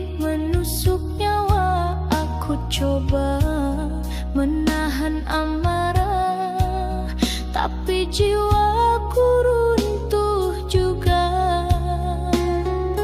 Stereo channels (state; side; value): identical; both; correlation 1.00